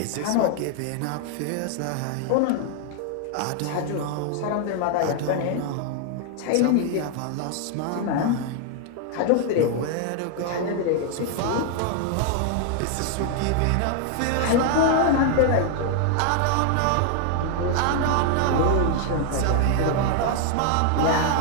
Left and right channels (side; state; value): both; different; correlation 0.00